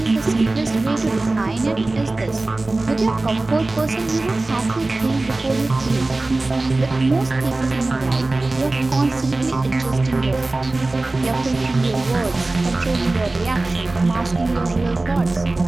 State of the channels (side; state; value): left; quieter; 3.1 dB